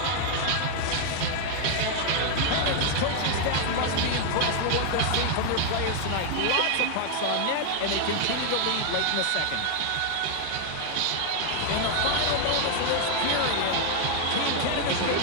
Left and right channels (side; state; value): both; different; correlation 0.00